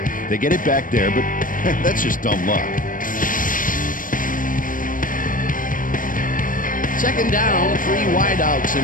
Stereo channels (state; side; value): late; right; 0.40 ms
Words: They get it back there, but that's just dumb luck. 2nd down, 3 wideouts in